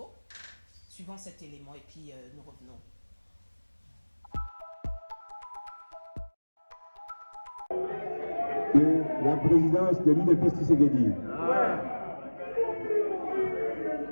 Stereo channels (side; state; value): both; inverted; correlation -1.00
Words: Suivons cet élément et puis nous revenons. Que la présidence de l'UDPS Tshisekedi,